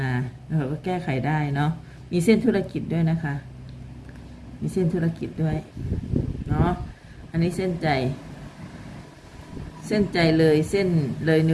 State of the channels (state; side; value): identical; both; correlation 1.00